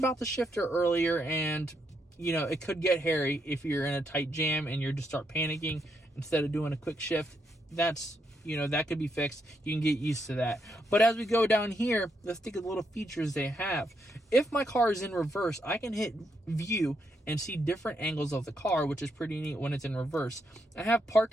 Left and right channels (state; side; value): normal; both; correlation 0.78